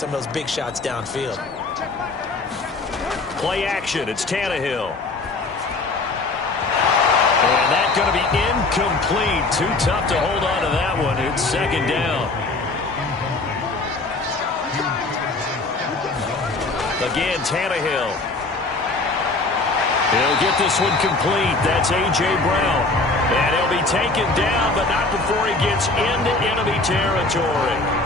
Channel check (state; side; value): quieter; right; 3.4 dB